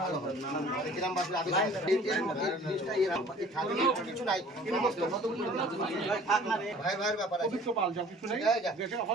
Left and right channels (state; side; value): normal; both; correlation 0.49